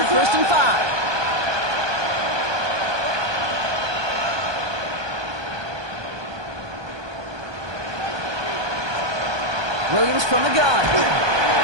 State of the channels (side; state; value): left; late; 1.2 ms